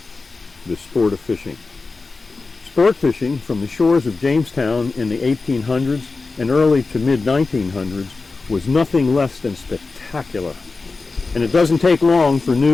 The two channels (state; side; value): quieter; right; 3.9 dB